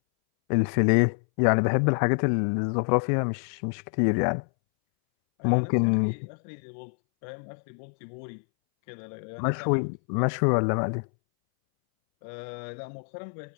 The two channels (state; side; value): silent; right; 61 dB below the other